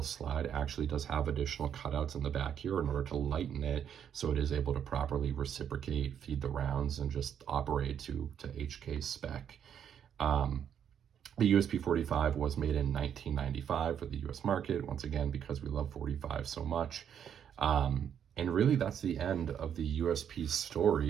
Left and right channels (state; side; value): quieter; left; 8.7 dB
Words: slide actually does have additional cutouts in the back here in order to lighten it, so it is able to properly reciprocate, feed the rounds, and just operate to HK spec. The USP 45 was made in 1995 for the US market, once again, because we love 45 so much. And really, that's the end of the USP